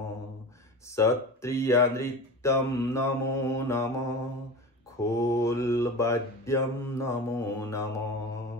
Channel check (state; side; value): normal; both; correlation 0.30